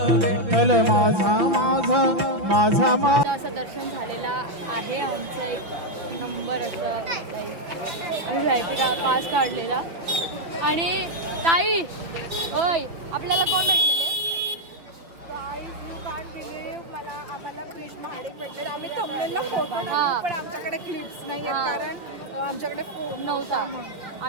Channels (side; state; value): left; late; 5.7 ms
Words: विठ्ठल माझा माझा माझा माझा. असं दर्शन झालेला आहे आमचं. एक नंबर असं आम्ही VIP पास काढलेला. आणि ताई ओय आपल्याला कोण भेटलेलं? यू कांट बिलीव्ह, आम्हाला क्रिश महाडिक भेटले. आम्ही थंबनेलला फोटो टाकू, पण आमच्याकडे क्लिप्स नाही कारण आमच्याकडे फोन नव्हता.